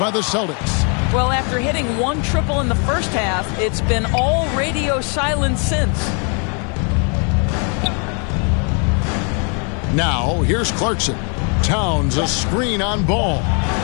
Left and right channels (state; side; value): quieter; right; 37.9 dB